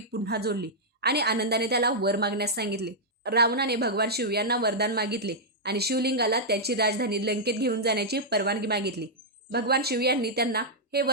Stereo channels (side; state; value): both; normal; correlation -0.08